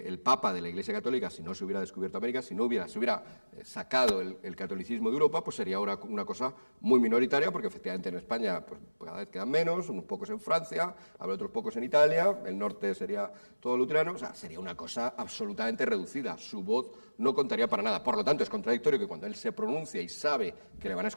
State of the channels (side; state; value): both; inverted; correlation -1.00